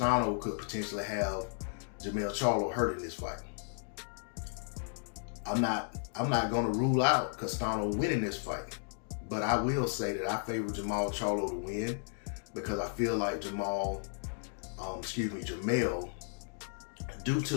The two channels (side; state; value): right; silent; digital silence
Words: could potentially have Jermell Charlo hurt in this fight. I'm not going to rule out Castano winning this fight. But I will say that I favor Jermell Charlo to win because I feel like Jermell, due to